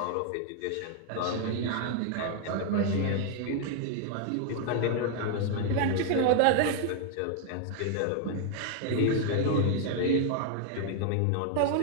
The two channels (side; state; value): both; different; correlation 0.00